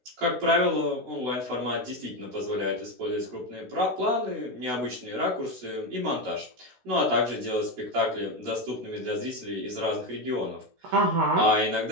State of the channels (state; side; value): late; left; 16 ms